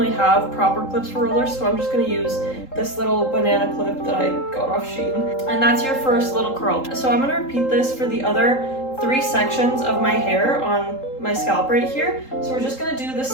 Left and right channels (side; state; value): right; late; 3.8 ms